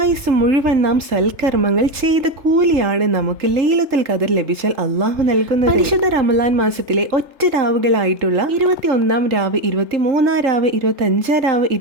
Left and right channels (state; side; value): late; left; 3.3 ms